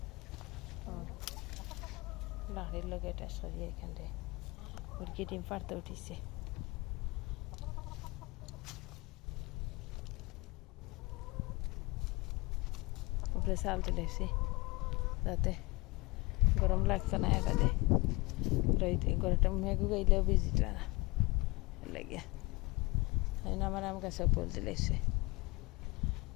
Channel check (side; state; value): right; quieter; 24.4 dB